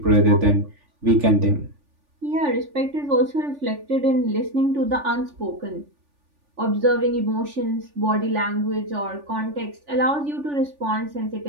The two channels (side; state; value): left; late; 3.5 ms